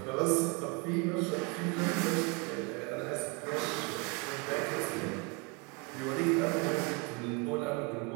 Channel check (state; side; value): quieter; left; 30.1 dB